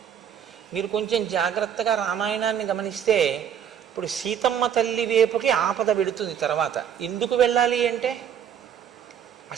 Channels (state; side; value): quieter; left; 8.9 dB